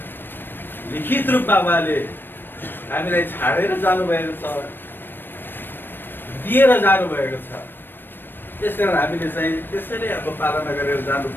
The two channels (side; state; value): right; late; 0.096 ms